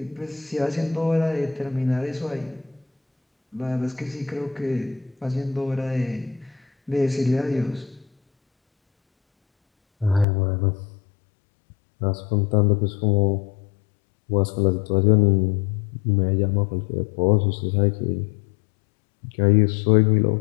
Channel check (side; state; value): right; drops out; at 10.2 s